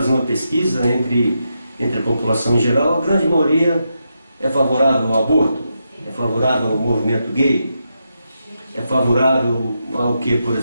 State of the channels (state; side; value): inverted; both; correlation -0.85